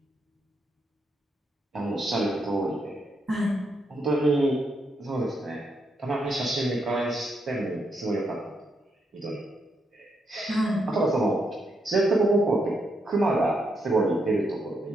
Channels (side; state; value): both; normal; correlation 0.80